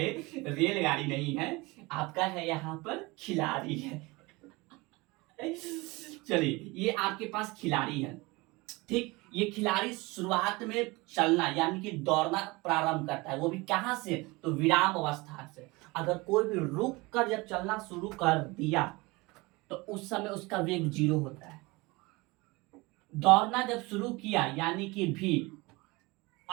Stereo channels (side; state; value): left; quieter; 23.7 dB